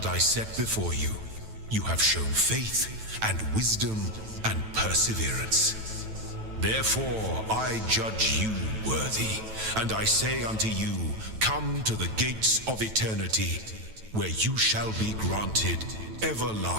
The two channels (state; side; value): late; left; 9.1 ms